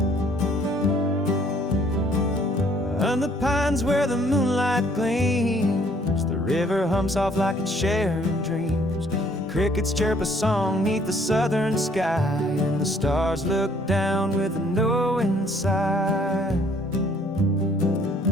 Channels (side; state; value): both; normal; correlation 0.61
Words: On the pines where the moonlight gleams, the river hums soft like it's sharing dreams. Crickets chirp a song 'neath the southern sky, and the stars look down with a knowing sigh.